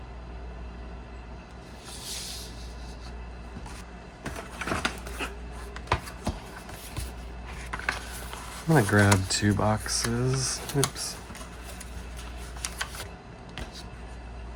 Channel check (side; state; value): both; identical; correlation 1.00